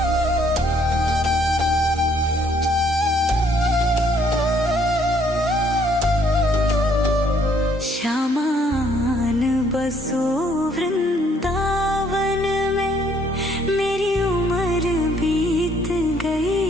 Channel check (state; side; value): normal; both; correlation 0.65